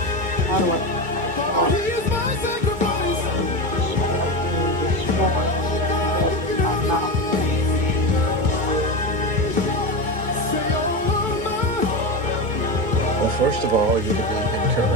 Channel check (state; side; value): late; left; 2.2 ms